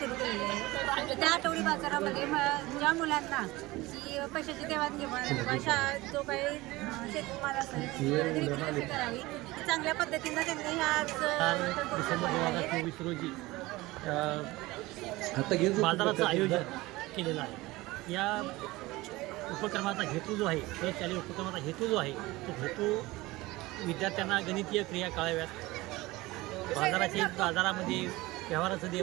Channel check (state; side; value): quieter; left; 20.2 dB